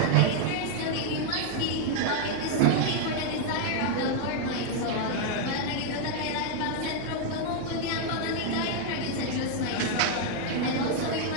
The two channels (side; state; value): both; different; correlation 0.00